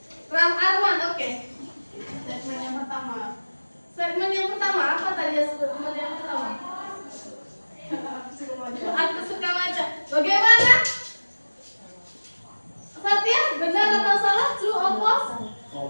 Ram Arman, oke. Statement yang pertama. Statement yang pertama apa tadi ya? Statement yang pertama. Aku suka baca. Bagaimana? Satya, benar atau salah? True or false?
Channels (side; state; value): both; inverted; correlation -1.00